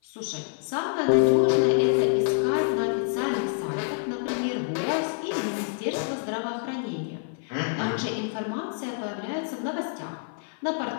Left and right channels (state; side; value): silent; right; 55 dB below the other